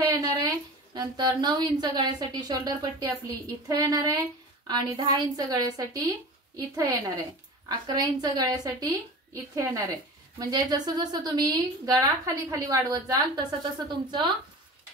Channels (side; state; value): both; normal; correlation 0.35